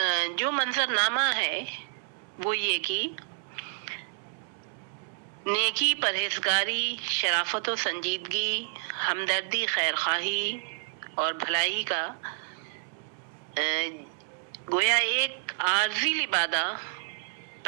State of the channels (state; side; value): silent; left; 58 dB below the other